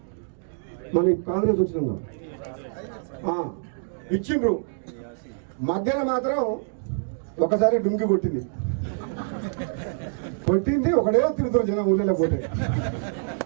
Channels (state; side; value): silent; left; digital silence